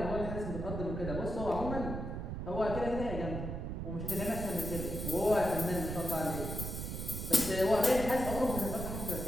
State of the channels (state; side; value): noise; right; rumble, 4 dB below the sound